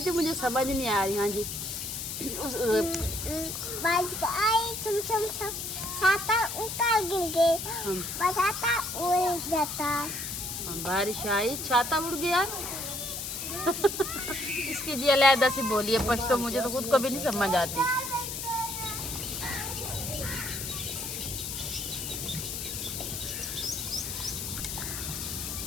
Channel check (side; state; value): left; noise; hiss, 5 dB below the sound